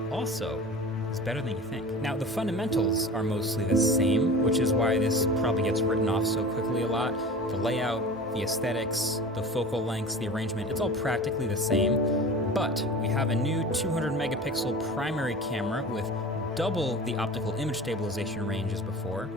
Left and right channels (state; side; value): normal; both; correlation 0.36